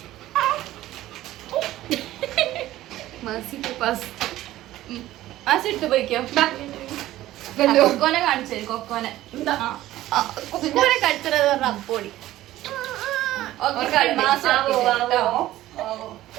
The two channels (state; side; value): quieter; left; 15.0 dB